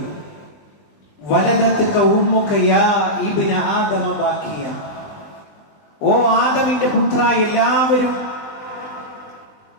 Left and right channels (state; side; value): late; right; 20 ms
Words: വലദത്ക ഉമ്മുക യാ ഇബ്ന ആദമ ബാക്കിയ, ഓ ആദമിന്റെ പുത്ര,